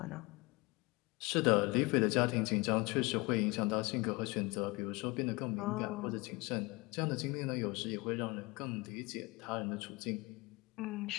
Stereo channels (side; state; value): right; quieter; 24.8 dB